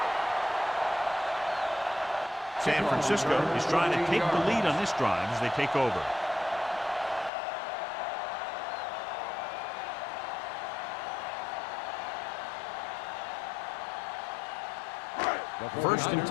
San Francisco is trying to take the lead on this drive as they take over. First and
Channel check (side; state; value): right; drops out; at 7.3 s